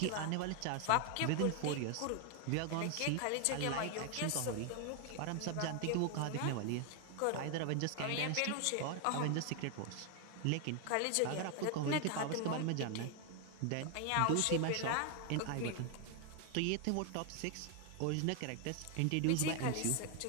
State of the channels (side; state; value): both; different; correlation 0.00